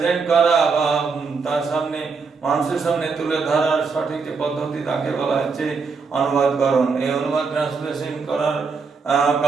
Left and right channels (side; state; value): left; quieter; 4.9 dB